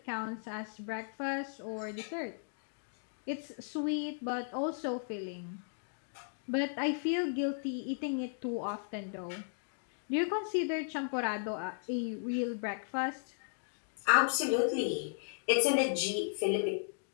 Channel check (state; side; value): silent; right; digital silence